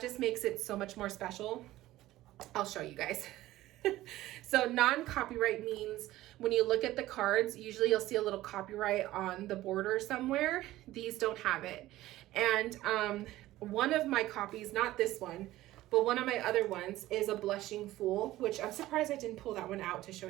makes it so much more special. I'll show you guys. So non-copyright means when you look at the cards, usually you'll see a little copyright on the border somewhere. These don't have it. And one of my copies, not this one, but one of my other ones is a Blushing Fool, which I'm surprised I didn't pull that one out to show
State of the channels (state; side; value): quieter; left; 15.9 dB